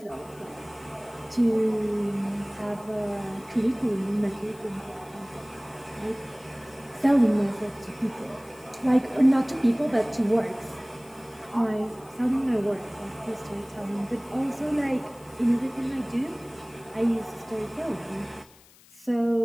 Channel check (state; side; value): noise; left; hiss, 25 dB below the sound